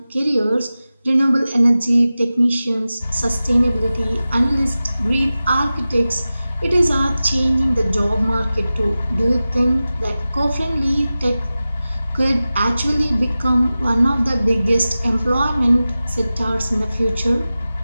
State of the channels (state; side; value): inverted; both; correlation -0.95